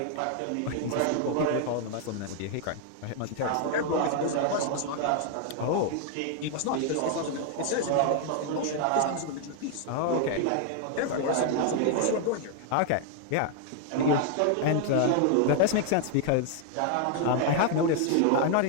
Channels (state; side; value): different; both; correlation 0.00